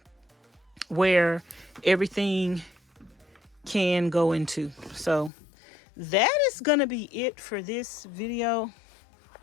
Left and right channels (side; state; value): right; drops out; at 5.3 s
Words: where everything can go into. So that is going to be it for this video.